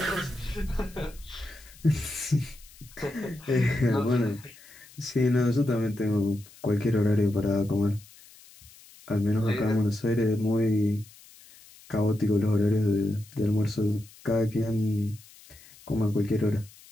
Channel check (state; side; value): noise; left; hiss, 23 dB below the sound